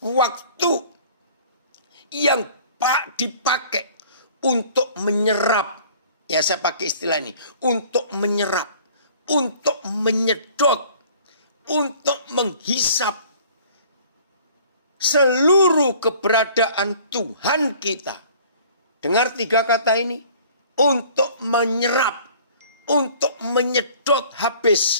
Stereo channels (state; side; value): inverted; both; correlation -0.51